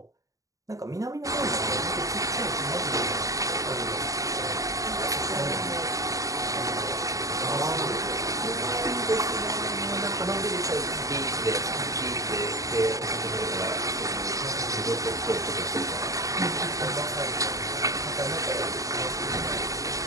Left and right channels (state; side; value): late; left; 0.16 ms